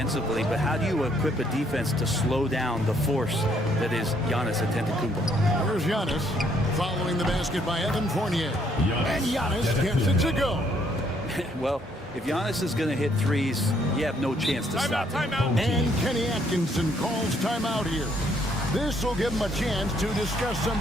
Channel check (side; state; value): both; normal; correlation 0.68